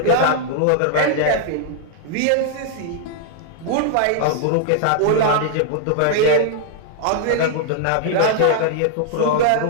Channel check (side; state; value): both; different; correlation -0.01